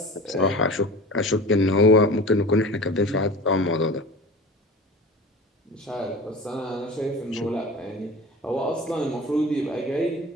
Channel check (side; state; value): both; normal; correlation 0.37